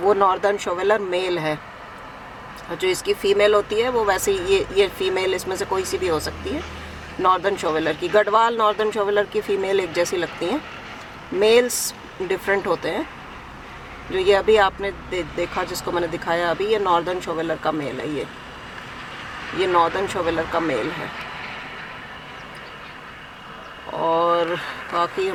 नॉर्दर्न शोवेलर मेल है। और जो इसकी फ़ीमेल होती है वो वैसे ये फ़ीमेल इसमें से कोई सी भी हो सकती है, नॉर्दर्न शोवेलर की। गढ़वाल नॉर्दर्न शोवेलर की फ़ीमेल एक जैसी लगती हैं, मेल्स डिफरेंट होते हैं। जो ये अभी आपने देखा जिसको मैंने दिखाया अभी, ये नॉर्दर्न शोवेलर का मेल है। ये नॉर्दर्न शोवेलर का मेल है। और बाकी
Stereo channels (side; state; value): both; identical; correlation 1.00